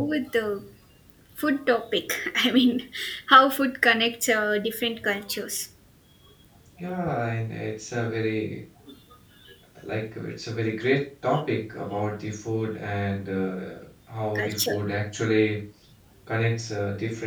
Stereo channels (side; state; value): both; identical; correlation 1.00